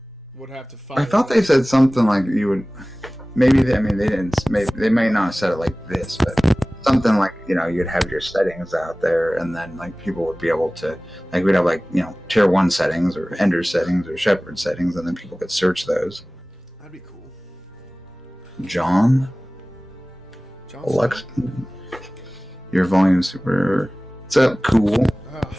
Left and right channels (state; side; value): normal; both; correlation 0.98